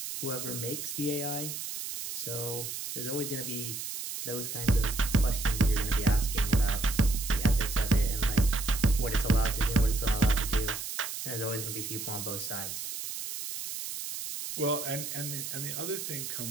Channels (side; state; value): right; noise; hiss, 6 dB below the sound